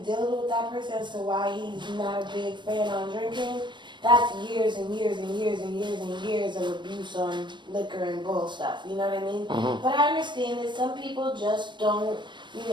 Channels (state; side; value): late; left; 0.22 ms